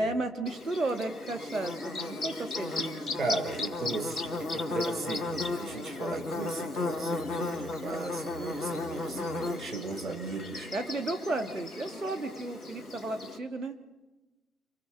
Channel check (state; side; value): normal; both; correlation 0.70